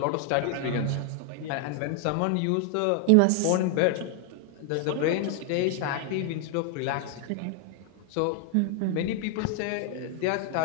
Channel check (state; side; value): different; both; correlation 0.00